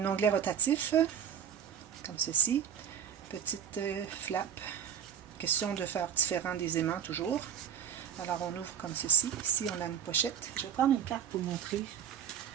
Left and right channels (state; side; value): quieter; left; 8.7 dB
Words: onglet rotatif. comme ceci. Petite flap. Question de faire différent des aimants toujours. Alors on ouvre comme ceci. Ici on a une pochette. Je vais prendre une carte pour montrer